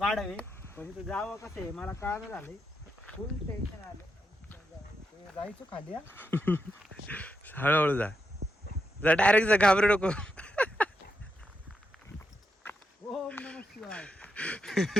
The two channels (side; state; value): both; normal; correlation 0.83